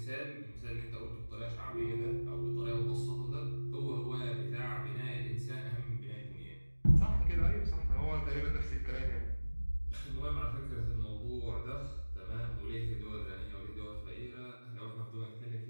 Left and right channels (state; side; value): inverted; both; correlation -1.00